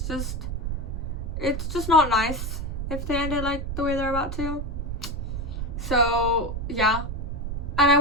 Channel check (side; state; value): right; noise; rumble, 4 dB below the sound